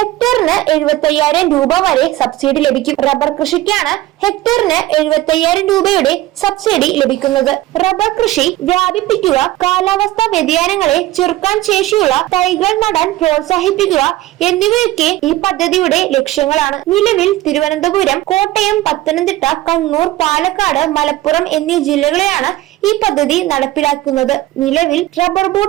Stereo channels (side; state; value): left; quieter; 16.1 dB